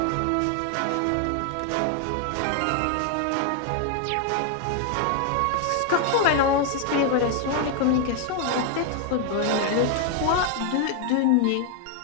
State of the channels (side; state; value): both; different; correlation 0.00